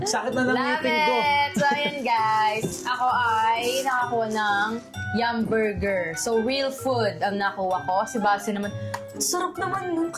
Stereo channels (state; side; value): identical; both; correlation 1.00